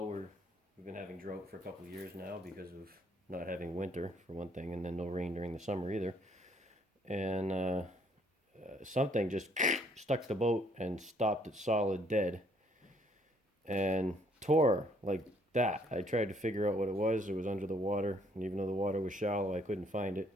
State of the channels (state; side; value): normal; both; correlation 0.65